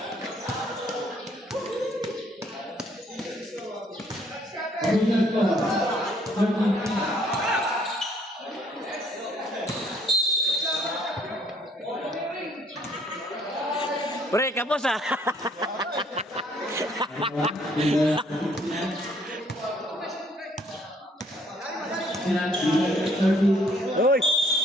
Pre, kapos ah. Uy.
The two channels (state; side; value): normal; both; correlation 0.64